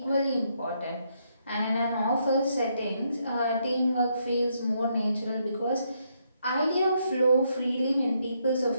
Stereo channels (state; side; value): inverted; both; correlation -0.75